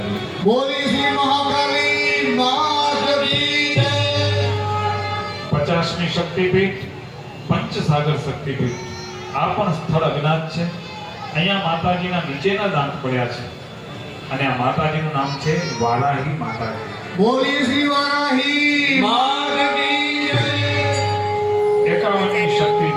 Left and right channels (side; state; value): both; identical; correlation 1.00